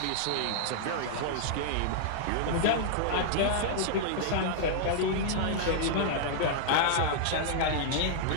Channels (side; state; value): both; different; correlation -0.01